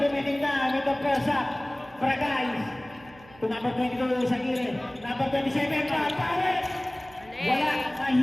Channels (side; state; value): right; noise; hum, 24 dB below the sound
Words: time in the first half. Bragais. To number 22 sa gilid. Number 27, Papawe. Wala,